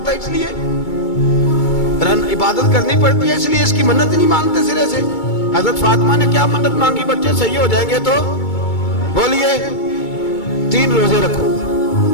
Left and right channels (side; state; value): right; late; 2.2 ms